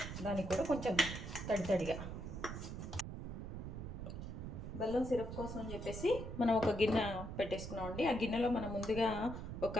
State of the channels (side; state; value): right; noise; rumble, 7 dB below the sound